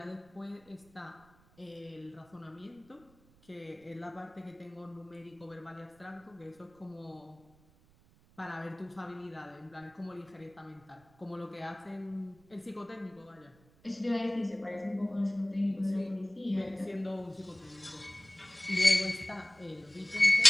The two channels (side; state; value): right; noise; rumble, 29 dB below the sound